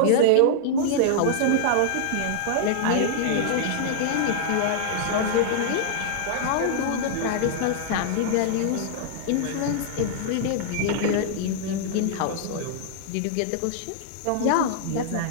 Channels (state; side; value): different; both; correlation -0.01